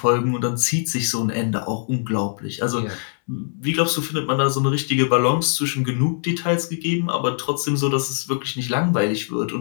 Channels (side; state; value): right; silent; digital silence